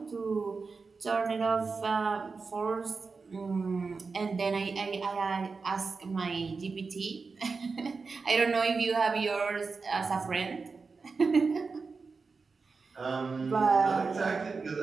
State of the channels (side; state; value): left; quieter; 4.5 dB